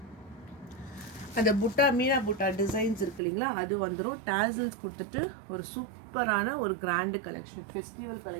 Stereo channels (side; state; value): left; drops out; at 3.2 s